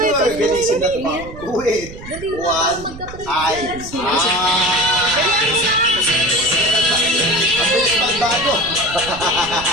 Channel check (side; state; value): right; noise; rumble, 14 dB below the sound